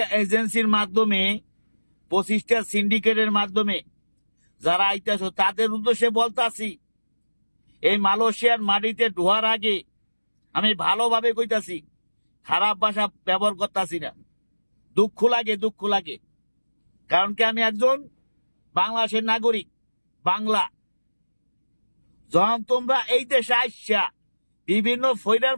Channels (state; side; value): inverted; both; correlation -1.00